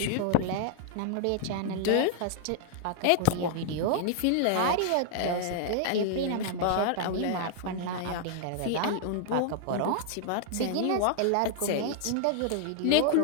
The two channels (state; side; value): different; both; correlation -0.01